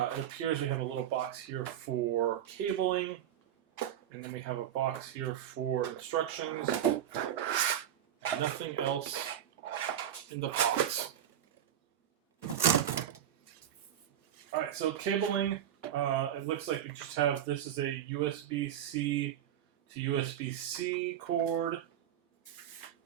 appears we have a little box here for cabling, and then we have a box here for instructions. And nothing else in the box. Alright, so cabling, it looks like we just have, this is a USB-C to USB-C cord.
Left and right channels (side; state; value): left; quieter; 10.4 dB